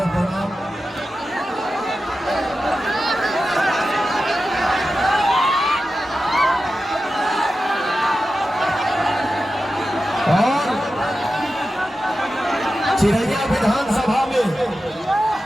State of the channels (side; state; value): both; normal; correlation 0.92